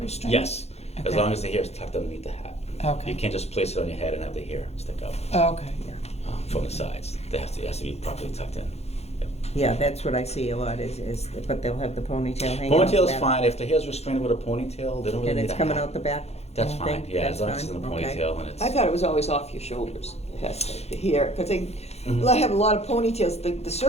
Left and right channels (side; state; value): right; late; 0.31 ms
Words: Yes, as Okay. long as the hair is tucked underneath the hat. Okay. You can't just place it on your head and have the hair stick up Okay. from the sides. It has to be properly tucked in. Yep. yeah, that's what I see a lot but they'll have the ponytail hanging out the Ponytail's back. fine, if the hair's restrained with a ponytail, they don't really And need it's a coming hat. out the back? That's you fine, think? yeah, That's as long as it's in a fine? Okay. ponytail and it's. I thought it was always off your shoulders, yes, the hair, because they Mhm. have a lot of ponytails, the